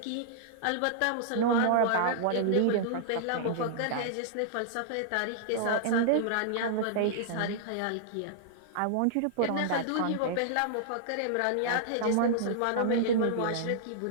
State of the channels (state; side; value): different; both; correlation -0.01